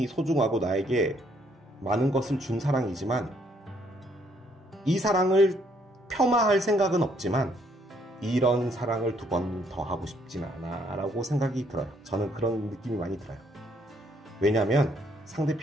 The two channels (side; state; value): both; normal; correlation 0.68